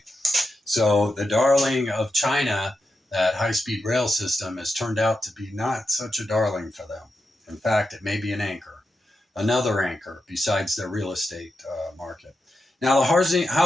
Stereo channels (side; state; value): both; normal; correlation 0.88